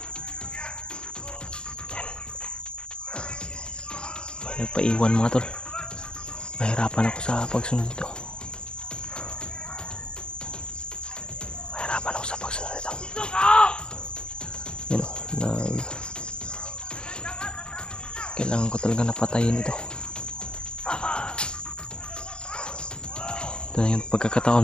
Nagpaiwan mga tol. Mahirapan ako sa pagsunod ito. Mahirapan ako sa pagsunod ito. Yan o. Kailangan ko talaga napatayin ito. Ito na yung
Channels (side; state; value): right; late; 0.051 ms